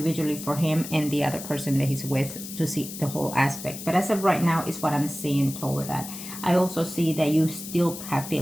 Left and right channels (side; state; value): left; noise; hiss, 10 dB below the sound